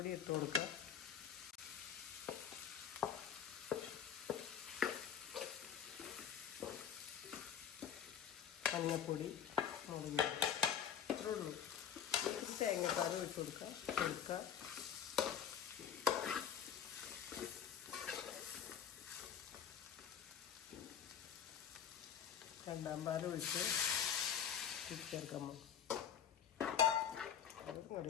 ഇട്ട് കൊടുക്കുക, മഞ്ഞപ്പൊടി, മുളക് ഇത്രേ ഉള്ളൂ. തേങ്ങാപ്പാൽ ഇട്ട് കൊടുക്കുക. രണ്ടാം പാൽ ഒഴിച്ച് ചേർക്കുമ്പോൾ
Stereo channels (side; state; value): right; quieter; 8.6 dB